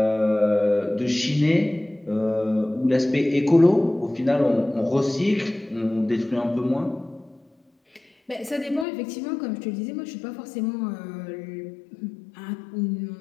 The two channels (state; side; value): drops out; right; at 8.8 s